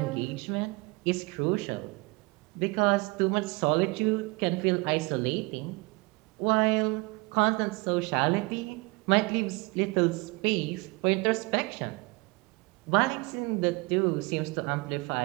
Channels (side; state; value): left; quieter; 26.3 dB